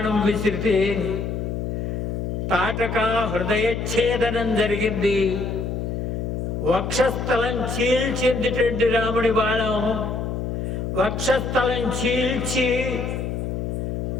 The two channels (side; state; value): left; noise; hum, 3 dB below the sound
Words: విసిరితే తాటక హృదయఛేదనం జరిగింది. వక్షస్థలం చీల్చిందిటండి రాముడి బాణం. వక్షస్థలం చీల్చి